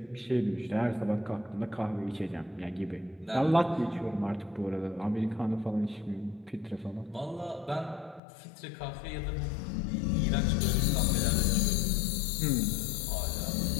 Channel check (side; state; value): right; drops out; at 8.2 s